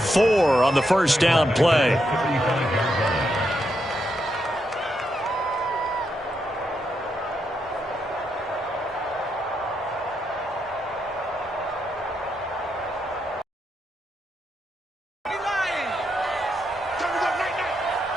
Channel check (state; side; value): normal; both; correlation 0.81